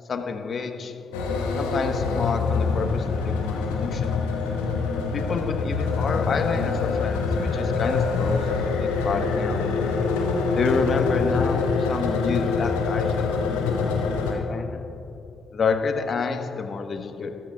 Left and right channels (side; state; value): right; quieter; 4.3 dB